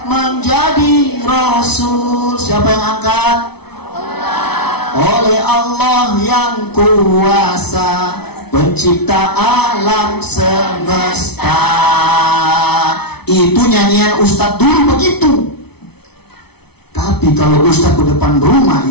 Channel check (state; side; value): late; right; 0.98 ms